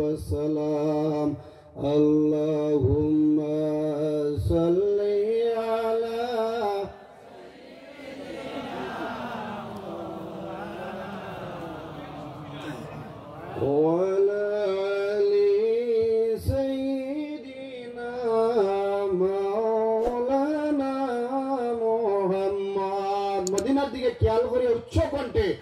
اللهم صل على وعلى آل سيدنا مولانا محمد. মদিনার দিকে খেয়াল করে উচ্চ কণ্ঠে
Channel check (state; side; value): identical; both; correlation 1.00